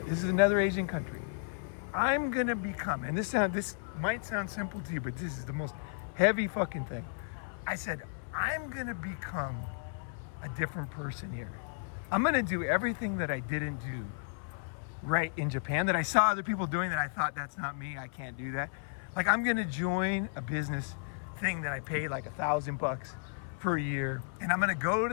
is another Asian country. I'm gonna become, and this might sound simple to you, but this is the most heavy fucking thing. I said, I'm gonna become a different person here. I'm gonna do everything that I didn't do right in Japan, that I saw other people doing, that I thought, that's not me, I can't do that. Like, I'm gonna join a business thing that I pay like $1,000 per year, and I'm gonna go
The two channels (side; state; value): right; silent; 55 dB below the other